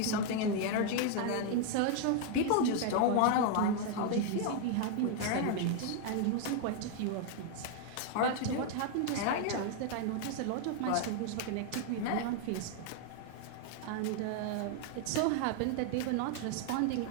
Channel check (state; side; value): different; both; correlation 0.00